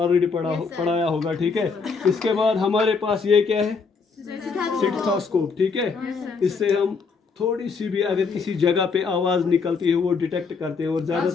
पढ़ाया होगा, ठीक है। इसके बाद हमारे पास ये क्या है, स्टेथोस्कोप, ठीक है। इससे हम थोड़ी सी भी अगर किसी जगह पे आवाज़ निकलती है वो डिटेक्ट करते हैं, और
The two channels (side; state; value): right; quieter; 5.0 dB